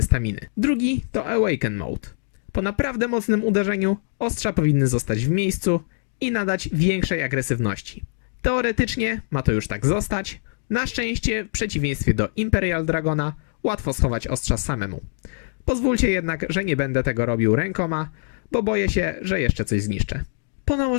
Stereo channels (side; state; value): right; silent; digital silence